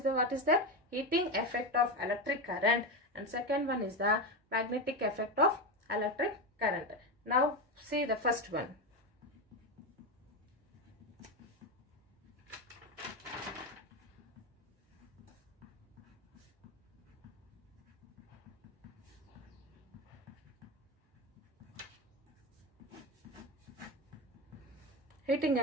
the what is the heating effect of electric current, and second one is the magnetic effect of electric current. Now see the first one. Heating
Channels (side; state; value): both; normal; correlation 0.14